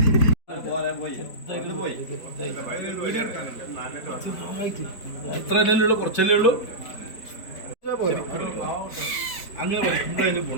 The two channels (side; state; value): right; late; 4.5 ms